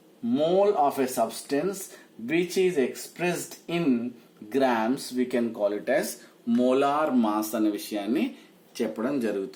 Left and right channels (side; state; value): both; identical; correlation 1.00